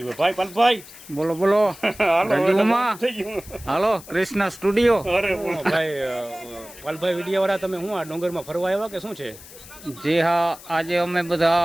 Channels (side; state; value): left; noise; hiss, 18 dB below the sound